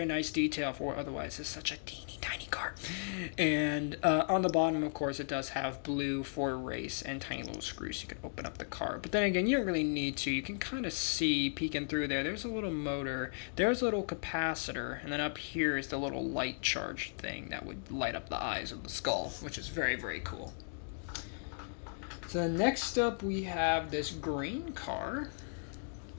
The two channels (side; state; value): right; silent; digital silence